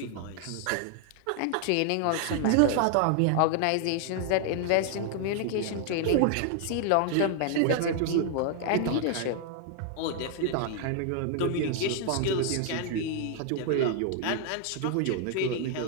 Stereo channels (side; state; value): both; different; correlation 0.00